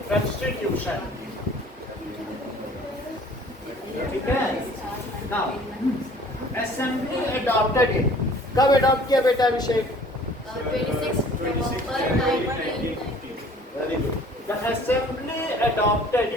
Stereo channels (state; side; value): normal; both; correlation 0.51